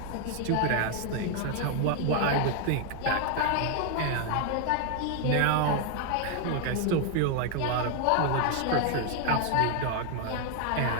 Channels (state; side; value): different; both; correlation 0.01